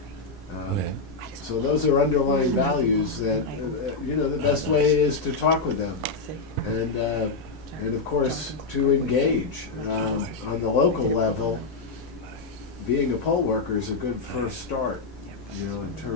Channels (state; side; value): quieter; right; 4.0 dB